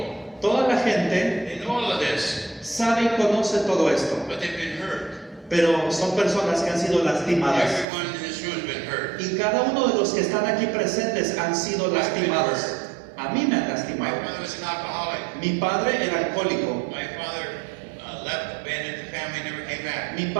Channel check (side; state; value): left; drops out; at 7.9 s